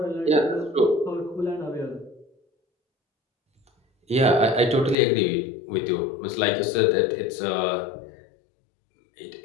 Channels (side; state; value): right; drops out; at 5.0 s